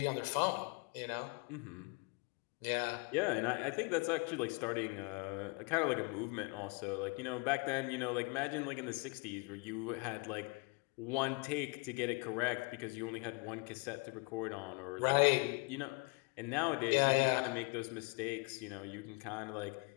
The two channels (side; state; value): right; quieter; 29.8 dB